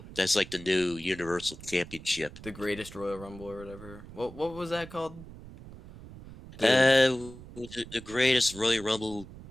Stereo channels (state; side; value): noise; right; rumble, 16 dB below the sound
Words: that's like the new Universal Championship. the greatest Royal Rumble or whatever. What was that called? The the greatest Royal Rumble